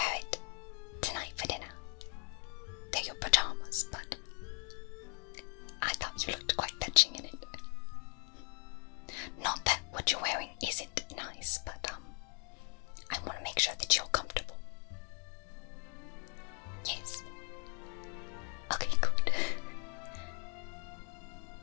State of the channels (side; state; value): right; quieter; 38.7 dB